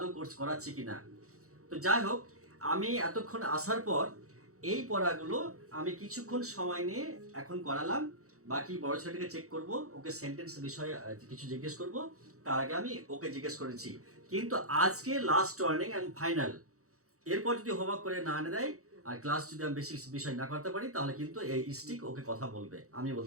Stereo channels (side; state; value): left; late; 0.65 ms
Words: কোর্স করাচ্ছি কিনা। তো যাই হোক, আমি এতক্ষণ আসার পর এই পড়াগুলো আমি কিছুক্ষণ সময় নিয়ে এখন করালাম। বাকি বড় ছেলেটাকে চেক করব, ওকে সেন্টেন্স বিষয়ে কিছু জিজ্ঞেস করব। তার আগে আমি ওকে জিজ্ঞেস করেছি, কিন্তু আজকে লাস্ট ওয়ার্নিং অ্যান্ড ফাইনাল। এরপর যদি হোমওয়ার্ক করে না এনে দেয় আর ক্লাস যদি আমি বেশি বিষয় না করতে পারি, তাহলে কিন্তু এই স্টিক ওকে কথা বলবে, আমি